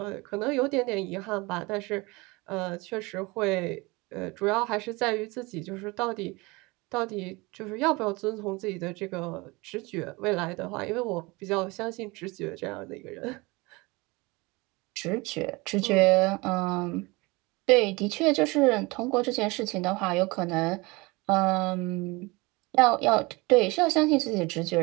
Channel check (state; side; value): quieter; left; 24.6 dB